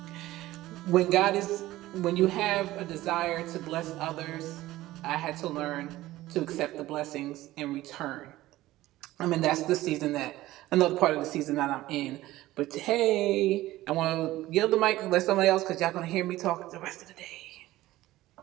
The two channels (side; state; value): left; quieter; 16.5 dB